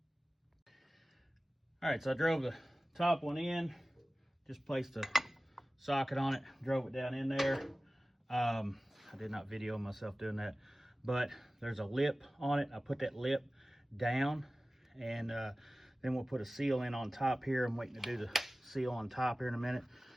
All right, so I drove the top one in, just placed a socket on it, drove it down in there. I did not video myself doing that, but there's a lip on it. I put that lip down, and then we'll put a seal in on top here. I'm waiting to do the seal on top here in a minute.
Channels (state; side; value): normal; both; correlation 0.97